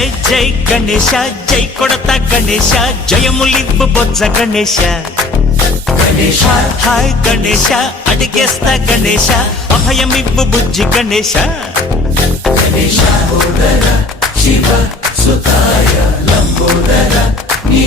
జై గణేశ జై కొడత గణేశ జయములివ్వు బొజ్జ గణేశ గణేశ హాయ్ గణేశ అడిగేస్తా గణేశ అభయమివ్వు బుజ్జి గణేశ గణేశ శివ సుతాయ లంబోదర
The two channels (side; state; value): right; quieter; 3.1 dB